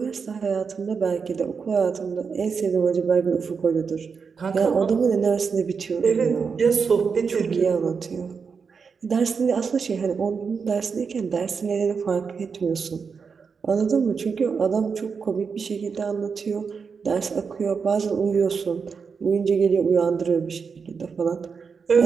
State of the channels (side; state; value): left; quieter; 5.7 dB